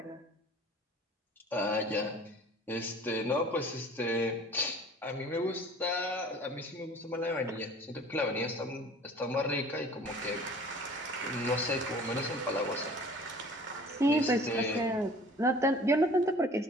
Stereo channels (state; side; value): normal; both; correlation 0.47